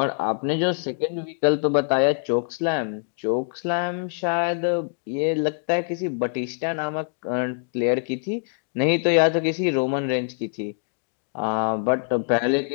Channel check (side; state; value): right; silent; digital silence